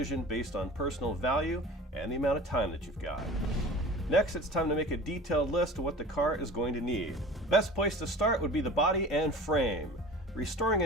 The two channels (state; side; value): normal; both; correlation 0.40